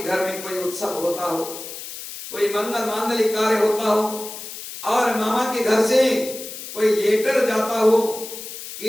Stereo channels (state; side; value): noise; left; hiss, 11 dB below the sound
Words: घर में कोई उत्सव होता हो, कोई मंगल मांगलिक कार्य होता हो और मामा के घर से कोई लेटर जाता हो